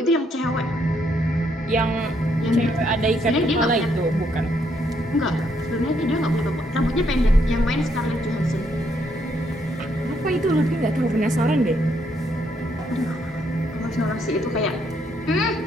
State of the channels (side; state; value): both; normal; correlation 0.73